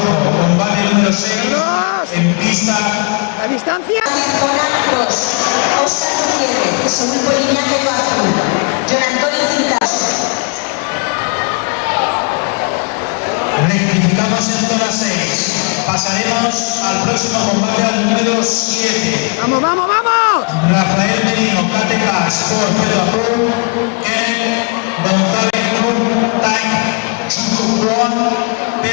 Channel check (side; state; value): right; quieter; 35.0 dB